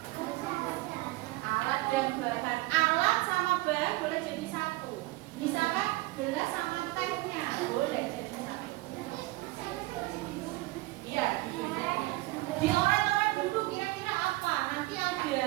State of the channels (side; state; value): left; quieter; 20.5 dB